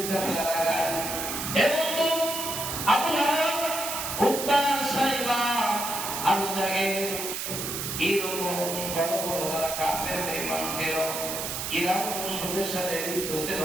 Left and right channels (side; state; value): right; noise; hiss, 4 dB below the sound